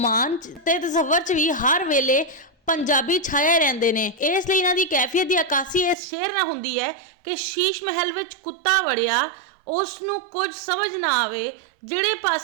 ते तसव्वुर च भी हर वेले पंजाबी छाए रहंदे ने। इसलिए इन्हां दी कैफियत की अक्कासी इस शेर नाल हुंदी है कि शीश महल विच कुत्ता वड़िया, उस नूं कुछ समझ ना आवे, जिहड़े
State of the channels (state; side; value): drops out; left; at 6.0 s